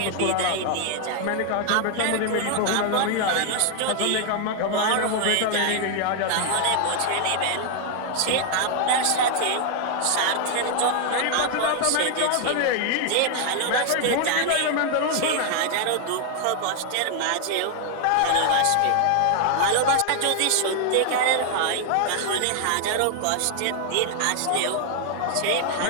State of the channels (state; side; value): different; both; correlation 0.00